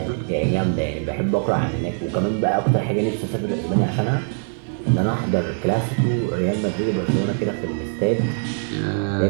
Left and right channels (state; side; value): silent; left; 60 dB below the other